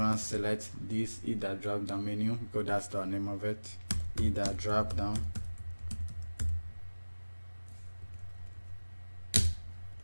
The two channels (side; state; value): both; inverted; correlation -1.00